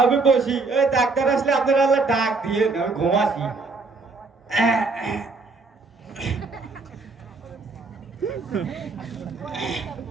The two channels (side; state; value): left; quieter; 3.9 dB